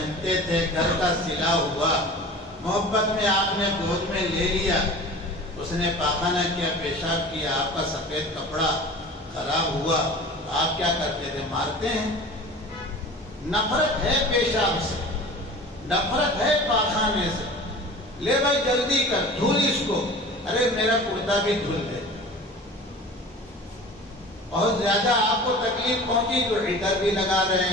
تھے، گھر کا سلا ہوا، محبت میں آپ نے گود میں لے لیا، اس نے پاخانہ کیا، پیشاب کیا، آپ کا سفید کپڑا خراب ہوا، آپ کیا کرتے تھے؟ مارتے ہیں۔ نفرت ہے پیشاب سے، نفرت ہے پاخانے سے، لے بھائی جلدی کر، دھل اس کو، ارے میرا کرتا بھی دھل دے۔ بہت زیادہ آپ کو تکلیف پہنچی تو عطر بھی لگا رہے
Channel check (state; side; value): normal; both; correlation 0.39